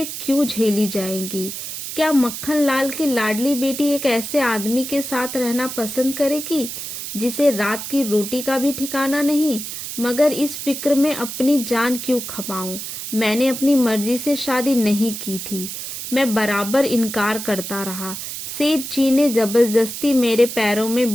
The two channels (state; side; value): noise; right; hiss, 7 dB below the sound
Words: क्यों झेली जाएंगी? क्या मक्खन लाल की लाडली बेटी एक ऐसे आदमी के साथ रहना पसंद करेगी जिसे रात की रोटी का भी ठिकाना नहीं? मगर इस फिक्र में अपनी जान क्यों खपाऊं? मैंने अपनी मर्जी से शादी नहीं की थी। मैं बराबर इनकार करता रहा। सेठ जी ने जबरदस्ती मेरे पैरों में